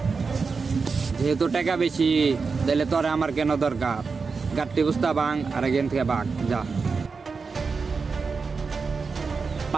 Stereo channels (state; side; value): quieter; left; 4.9 dB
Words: যেহেতু টাকা বেশি, তাহলে তোরে আমার কেন দরকার? গাড়ি বুঝতা বাং আর এখান থেকে বাঘ যা।